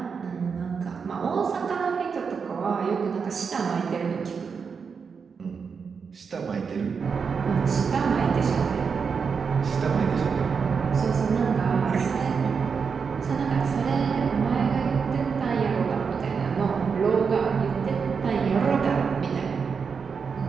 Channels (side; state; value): left; quieter; 5.8 dB